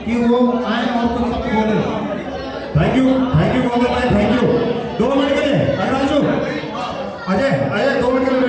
कि वो आए और कुछ शब्द बोले। थैंक यू गौतम भाई, थैंक यू। 2 मिनट के लिए अजय 2 मिनट के लिए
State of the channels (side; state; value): both; identical; correlation 1.00